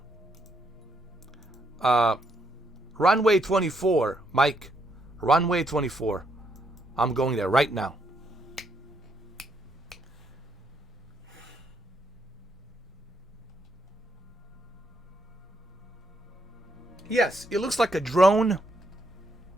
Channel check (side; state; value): both; normal; correlation 0.75